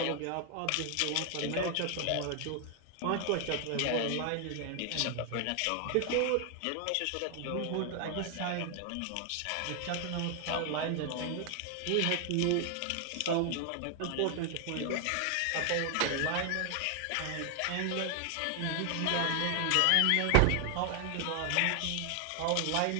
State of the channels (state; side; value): different; both; correlation 0.00